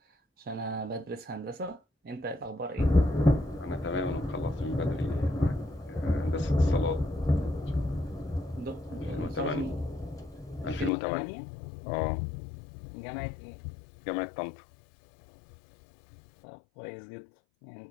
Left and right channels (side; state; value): right; drops out; at 10.9 s